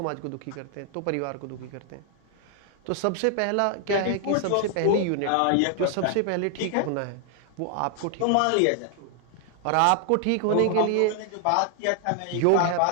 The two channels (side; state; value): both; different; correlation 0.00